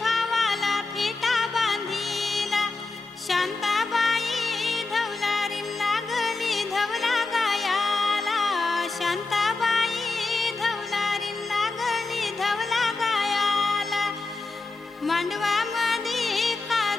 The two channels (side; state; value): right; quieter; 3.7 dB